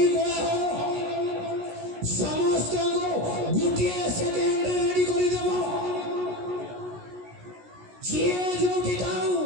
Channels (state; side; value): late; left; 17 ms